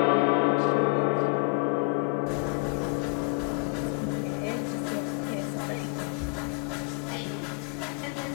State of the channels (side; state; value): right; quieter; 39.5 dB